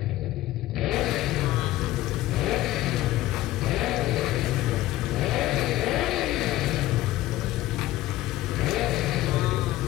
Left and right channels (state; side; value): quieter; right; 15.8 dB